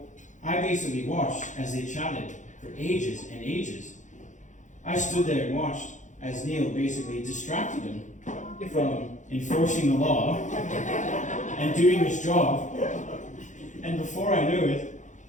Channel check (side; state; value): right; late; 0.36 ms